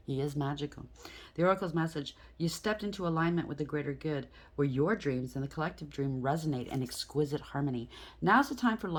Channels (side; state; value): both; identical; correlation 1.00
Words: He is magical. The oracle's message, you stepped into alignment with the greater good, where your dreams and the collective dream resonate in exquisite harmony. Now's the time for